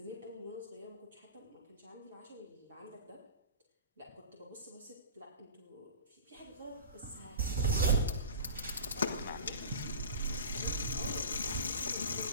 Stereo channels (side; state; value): both; inverted; correlation -0.35